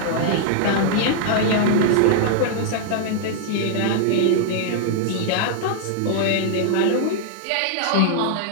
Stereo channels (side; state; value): both; different; correlation -0.01